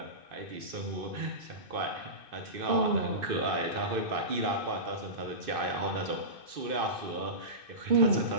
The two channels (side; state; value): left; late; 2.6 ms